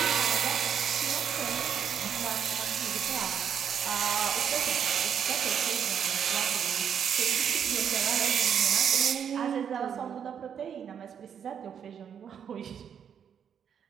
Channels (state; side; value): quieter; left; 8.0 dB